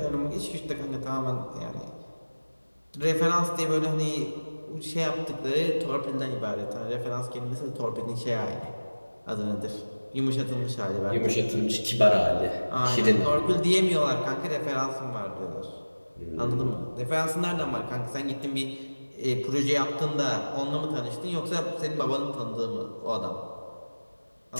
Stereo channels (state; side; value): inverted; both; correlation -1.00